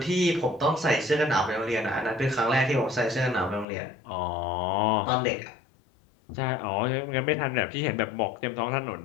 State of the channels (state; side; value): drops out; right; at 3.7 s